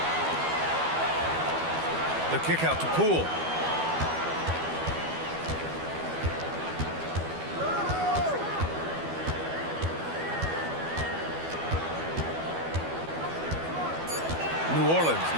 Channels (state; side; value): late; left; 12 ms